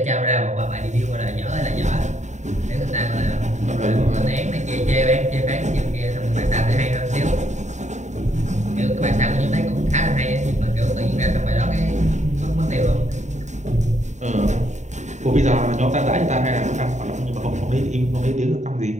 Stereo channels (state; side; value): late; left; 0.34 ms